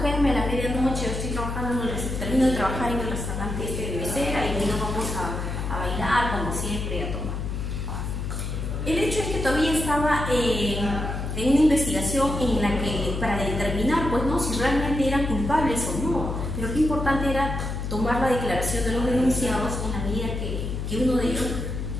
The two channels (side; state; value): left; noise; hum, 4 dB below the sound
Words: a la medianoche, estoy trabajando, termino de trabajar en el restaurante de mesera y luego vamos a bailar como siempre, a tomar. El hecho es que todavía estaba en una investigación en la que, para determinar pues, ¿no? si realmente eran culpables o no, pero qué importante era tomar la declaración de los denunciados en la medida que uno de ellos